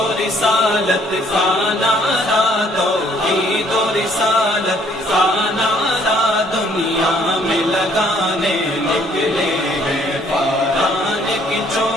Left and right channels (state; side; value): normal; both; correlation 0.63